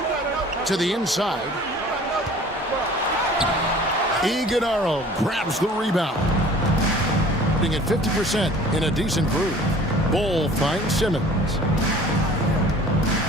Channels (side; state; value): both; normal; correlation 0.48